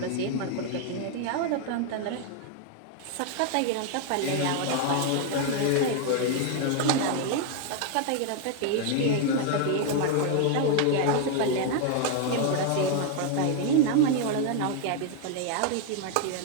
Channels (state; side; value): different; both; correlation 0.00